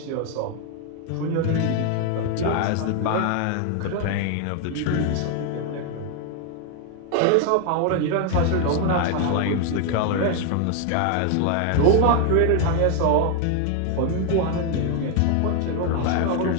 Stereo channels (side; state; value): both; different; correlation 0.01